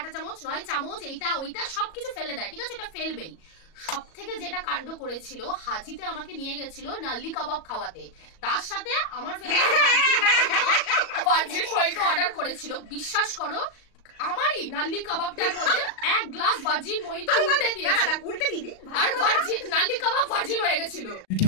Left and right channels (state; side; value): late; right; 37 ms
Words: চামচ নয় চামচ এইটা ওইটা সবকিছু ফেলে দেয়, ঠিক আছে? এটা ফেলবেই। সব থেকে যেটা কাণ্ড করেছিল, হাজিতে আমাকে নিয়ে গেছিল নাল্লি কাবাব খাওয়াতে, তার সাথে আমার ভার্জিন মহিতো অর্ডার করেছিল। বিশ্বাস করো, আমারই নাল্লি কাবাবটার মধ্যে এক গ্লাস ভার্জিন মহিতো উল্টে দিয়েছে, উল্টে দিবি, আর ভার্জিন নাল্লি কাবাব ভার্জিন হয়ে গেছিল। কি